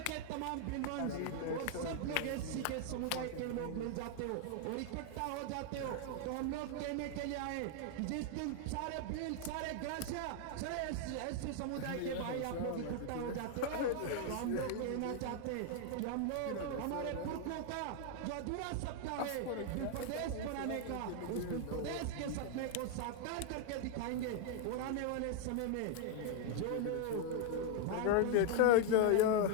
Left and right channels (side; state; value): both; different; correlation 0.00